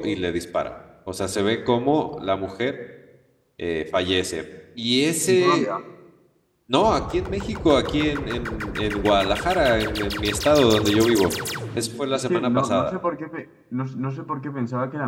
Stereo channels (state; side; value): identical; both; correlation 1.00